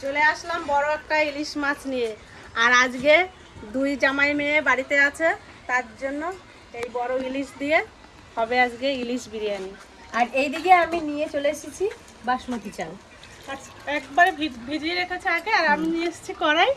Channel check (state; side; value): identical; both; correlation 1.00